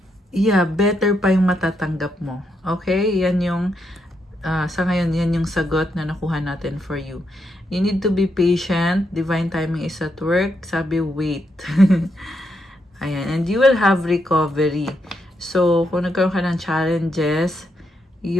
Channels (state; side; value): normal; both; correlation 0.80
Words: yeah, better pa yung matatanggap mo. Okay? Yan yung sa ngayon, yan yung sagot na nakuha natin for you. You need to be patient. Divine timing is at work. Sabi, wait. Ayan. And you will have recovery. So, kung nagkaroon ka ng challenges,